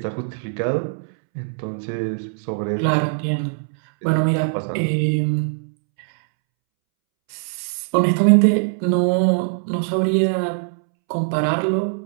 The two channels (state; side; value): silent; left; 65 dB below the other